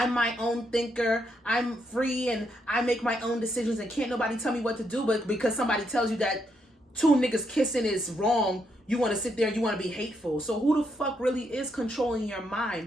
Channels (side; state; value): both; normal; correlation 0.78